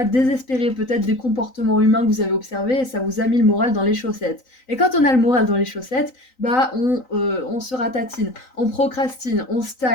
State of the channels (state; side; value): late; right; 3.9 ms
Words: désespéré, peut-être des comportements humains que vous avez observés et ça vous a mis le moral dans les chaussettes. Et quand on a le moral dans les chaussettes, bah on se ratatine, on procrastine, on